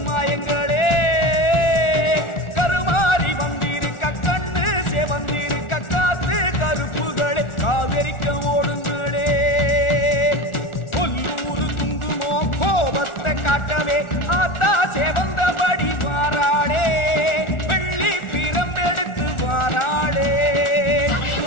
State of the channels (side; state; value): right; late; 1.4 ms